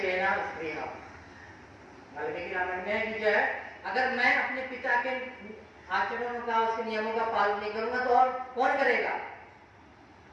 स्त्रीहा। वाल्मीकि रामायण में कि जो है, अगर मैं अपने पिता के आचरणों का, उसके नियमों का पालन नहीं करूंगा तो और कौन करेगा।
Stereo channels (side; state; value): both; identical; correlation 1.00